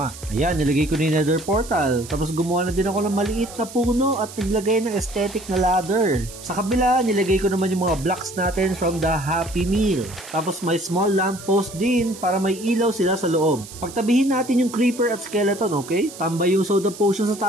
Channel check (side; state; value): right; noise; hiss, 15 dB below the sound